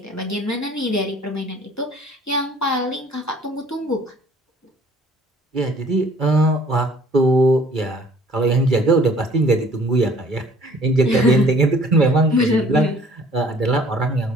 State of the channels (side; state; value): both; normal; correlation 0.55